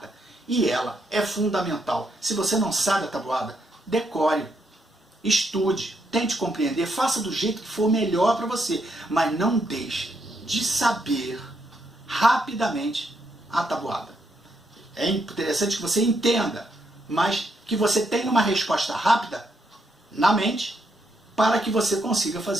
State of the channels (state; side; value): normal; both; correlation 0.78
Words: E ela é fundamental. Se você não sabe a tabuada, decore, estude, tente compreender, faça do jeito que for melhor para você. Mas não deixe de saber rapidamente a tabuada. É interessante que você entenda, mas que você tenha uma resposta rápida na mente para que você consiga